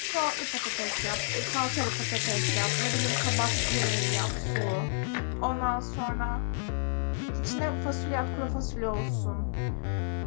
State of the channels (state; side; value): silent; right; 55 dB below the other